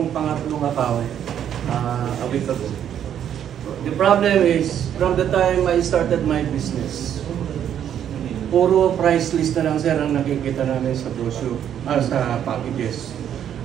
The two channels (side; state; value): left; quieter; 9.7 dB